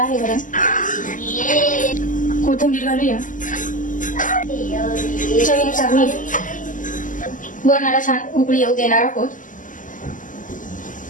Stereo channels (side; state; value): right; late; 0.38 ms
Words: वरण. कोथिंबीर घालूया. चवीनुसार मीठ. वरणाला छान उकळी येऊ देणार आहोत.